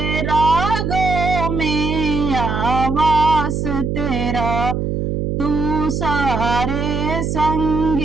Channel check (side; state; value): right; noise; hum, 1 dB below the sound